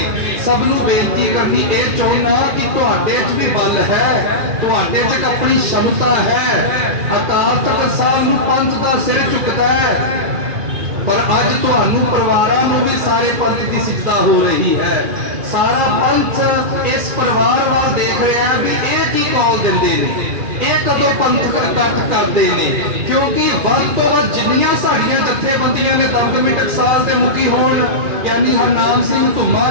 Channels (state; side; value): late; left; 2.4 ms